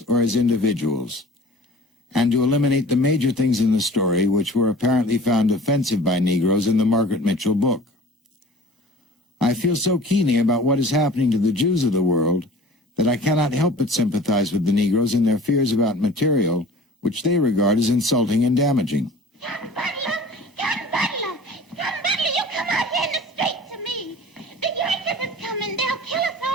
or as individuals, and to eliminate the major things in the story which were apparently found offensive by Negroes in the Margaret Mitchell book. I feel so keenly about what is happening to the Jews of the world that I cannot help but sympathize with the Negroes in their fears about material which they regard as insulting and damaging. John Butler! John Butler! John Butler, you come out here in the street to me. The Yankees is coming. They'll kill us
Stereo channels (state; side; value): normal; both; correlation 0.44